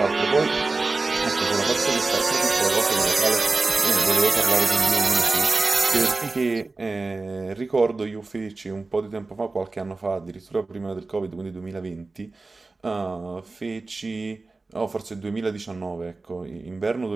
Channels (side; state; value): left; quieter; 3.6 dB